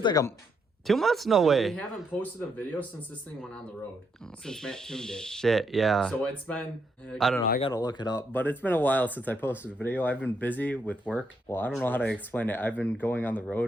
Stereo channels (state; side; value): normal; both; correlation 0.77